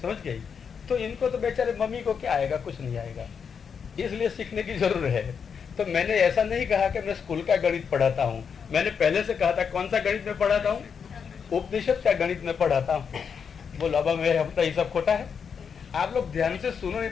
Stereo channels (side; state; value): right; quieter; 6.6 dB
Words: समझ गई? तो इनको तो बेचारे मम्मी को क्या आएगा, कुछ नहीं आएगा, इसलिए सीखने की जरूरत है। तो मैंने ऐसा नहीं कहा कि मैं स्कूल का गणित पढ़ाता हूँ, मैंने पहले से कहा था कौन सा गणित में पढ़ाता हूँ, उपनिषद का गणित में पढ़ाता हूँ। बोलो अब मेरे हम तो ये सब खोटा है, आप लोग ध्यान से सुनो, नहीं